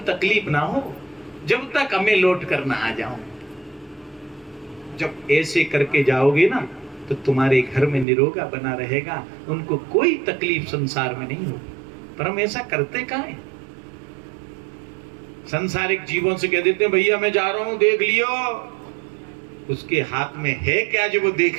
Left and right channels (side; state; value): left; drops out; at 8.1 s